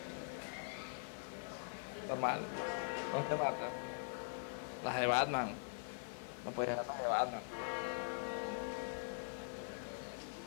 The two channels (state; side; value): silent; right; digital silence